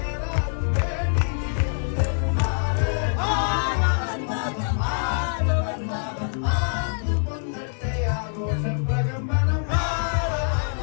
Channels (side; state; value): right; silent; digital silence